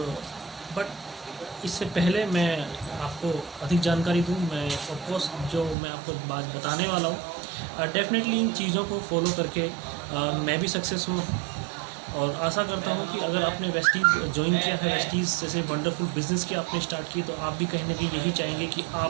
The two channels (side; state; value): left; drops out; at 5.8 s